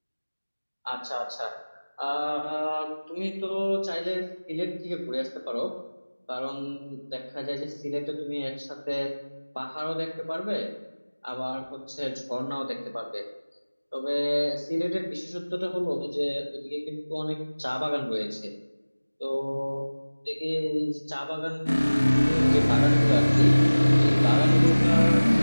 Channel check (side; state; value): both; inverted; correlation -1.00